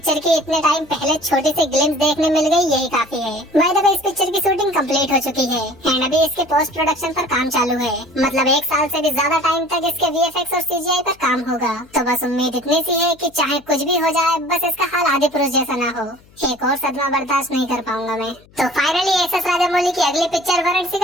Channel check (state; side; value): noise; left; hum, 28 dB below the sound